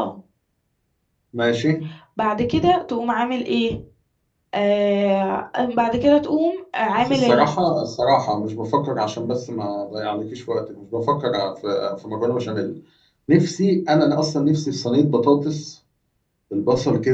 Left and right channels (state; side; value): identical; both; correlation 1.00